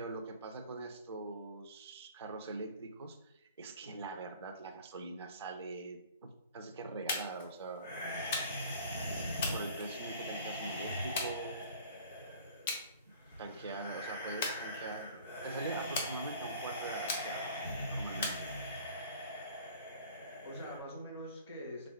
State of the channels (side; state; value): both; inverted; correlation -0.47